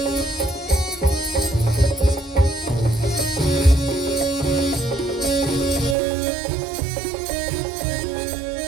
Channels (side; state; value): left; drops out; at 6.0 s